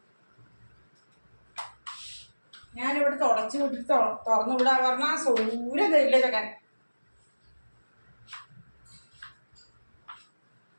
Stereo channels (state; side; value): inverted; both; correlation -1.00